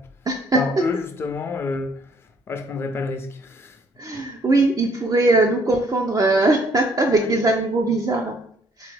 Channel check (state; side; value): normal; both; correlation 0.64